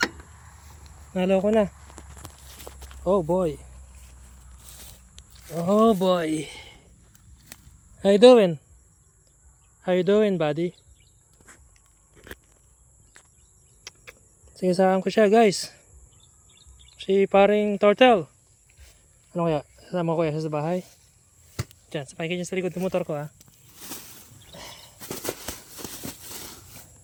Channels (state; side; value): identical; both; correlation 1.00